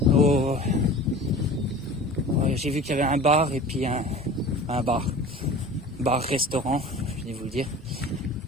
j'ai vu qu'il y avait un bar et puis un bar-restaurant, je vais vous le dire,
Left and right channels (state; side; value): normal; both; correlation 0.39